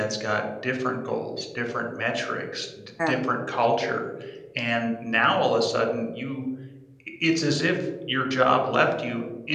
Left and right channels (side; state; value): both; identical; correlation 1.00